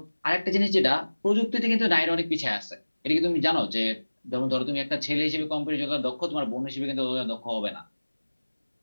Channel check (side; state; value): both; inverted; correlation -1.00